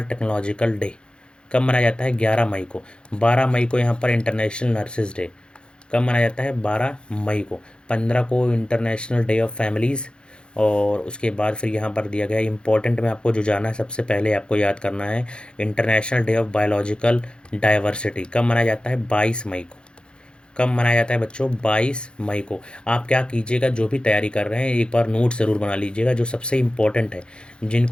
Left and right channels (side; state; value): right; late; 0.053 ms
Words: टेक्नोलॉजिकल डे कब मनाया जाता है, 11 मई को। 12 मई को यहाँ पर इंटरनेशनल नर्सेज डे कब मनाया जाता है, 12 मई को। 15 को इंटरनेशनल डे ऑफ फैमिलीज़। और उसके बाद फिर यहाँ पर दिया गया इंपॉर्टेंट में आपको जो जाना है, सबसे पहले आपको याद करना है international day of biological diversity कब मनाया जाता है, 22 मई को। कब मनाया जाता है बच्चों, 22 मई को। आप क्या कीजिएगा, जो भी तैयारी कर रहे हैं एक बार नोट ज़रूर बना लीजिएगा, जो सबसे इम्पोर्टेंट है,